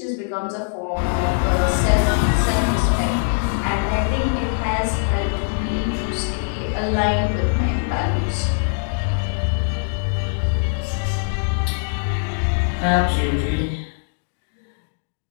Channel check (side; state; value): right; silent; digital silence